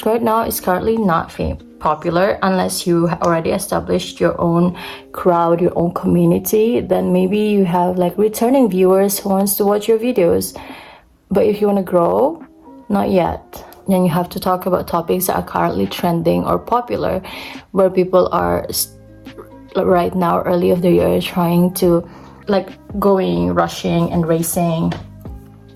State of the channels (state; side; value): identical; both; correlation 1.00